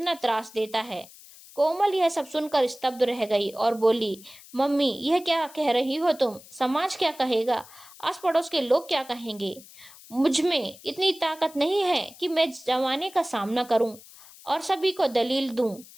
त्रास देता है। कोमल यह सब सुनकर स्तब्ध रह गई और बोली, मम्मी यह क्या कह रही हो तुम? समाज क्या कहेगा? आस पड़ोस के लोग क्या कहेंगे? मुझ में इतनी ताकत नहीं है कि मैं जमाने का सामना करूं और सभी को दलील दूं।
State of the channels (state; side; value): noise; left; hiss, 21 dB below the sound